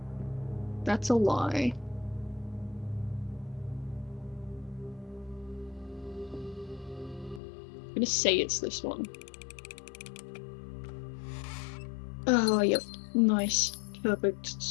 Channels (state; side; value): drops out; right; at 7.4 s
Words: That's a lie. I'm gonna say it's this one. Oh, yep. Nice. Perfect.